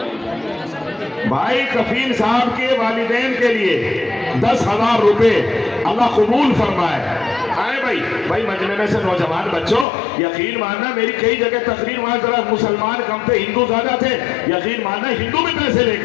भाई। कफील साहब के वालिदैन के लिए 10,000 रुपए अल्लाह कबूल फरमाए। आए भाई मजमे में से नौजवान बच्चों, यकीन मानना मेरी कई जगह तकरीर, वहां जरा मुसलमान कम थे, हिंदू ज्यादा थे। यकीन मानना हिंदू भी पैसे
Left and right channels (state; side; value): drops out; right; at 9.9 s